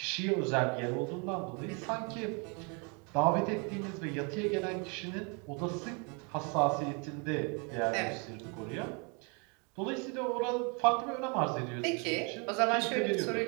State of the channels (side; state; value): left; quieter; 33.6 dB